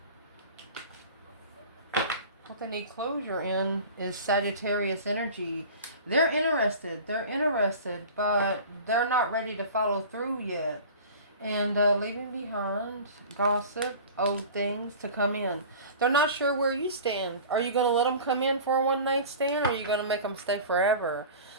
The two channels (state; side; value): inverted; both; correlation -0.39